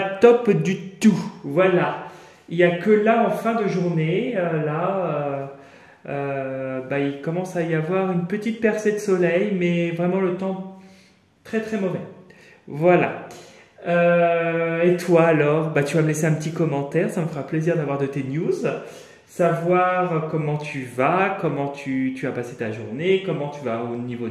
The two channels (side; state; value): both; identical; correlation 1.00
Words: top du tout. Voilà, il n'y a que là en fin de journée, il commence à y avoir une petite percée de soleil, mais vraiment le temps très très mauvais. Voilà. Et toi alors, tu vas me laisser un petit commentaire, ça me fera plaisir d'avoir de tes news, savoir comment tu vas, comment tu as passé ta journée, comment tu vas au niveau